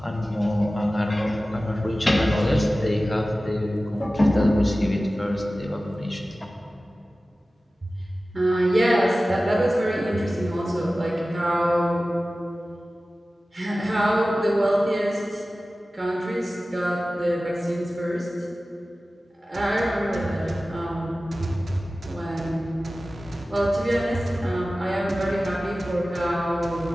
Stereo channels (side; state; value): both; normal; correlation 0.96